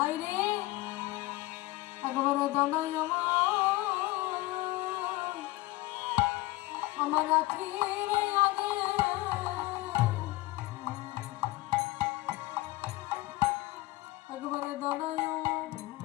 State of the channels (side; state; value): right; quieter; 19.2 dB